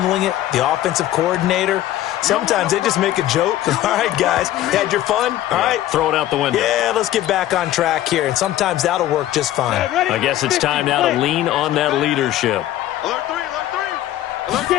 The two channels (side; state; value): right; quieter; 13.5 dB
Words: it? The offensive coordinator? Sometimes they just make a joke. All right, guys, had your fun? All right. Throw it out the window. Yeah, let's get back on track here. And sometimes that'll work just fine. I guess it's time now to lean on that leadership. Alert 3, alert 3. Alert,